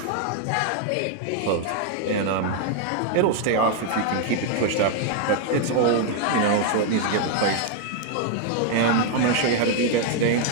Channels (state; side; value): different; both; correlation 0.00